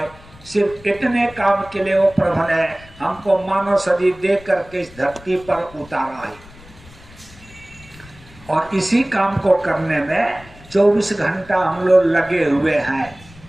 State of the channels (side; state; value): left; noise; rumble, 22 dB below the sound